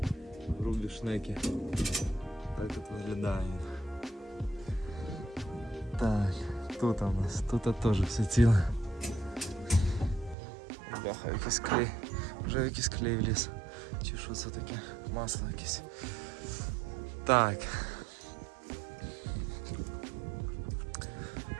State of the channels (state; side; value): drops out; left; at 10.4 s